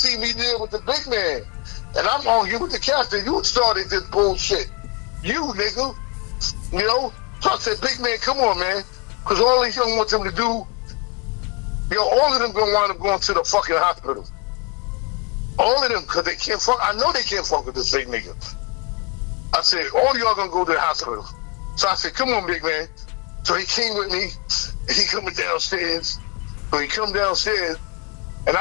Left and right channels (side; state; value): right; quieter; 27.1 dB